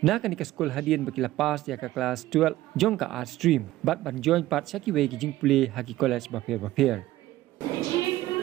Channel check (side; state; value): left; quieter; 15.8 dB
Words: na kanika Skul hadian baki lepas ya ka kelas 12 jong ka art stream bat ban join part syaki we ki jingpule ha ki college ba pher The